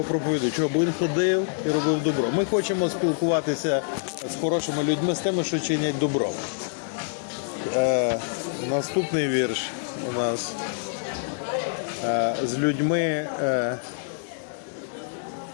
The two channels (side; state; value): right; silent; digital silence